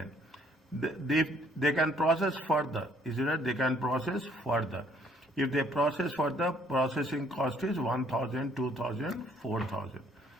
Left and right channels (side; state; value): both; normal; correlation 0.63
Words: They can process further. Is it? They can process further. If they process further, processing cost is 1,000, 2,000, 4,000.